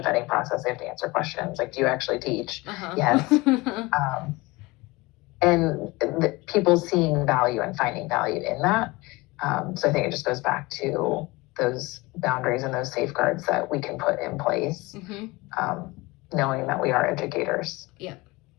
process. They have to answer questions. Like, do you actually teach? Yes. And people seeing value and finding value in that. So I think it just goes back to those boundaries and those safeguards that we can put in place, knowing that we are educators. Yeah.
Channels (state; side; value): quieter; right; 22.6 dB